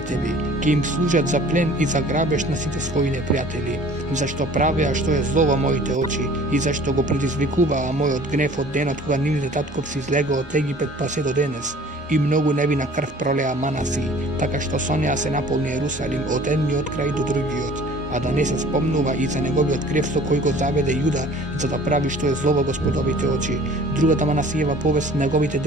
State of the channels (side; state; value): both; normal; correlation 0.49